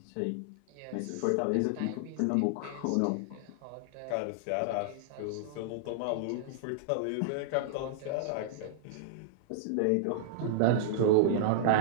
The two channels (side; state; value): both; different; correlation -0.01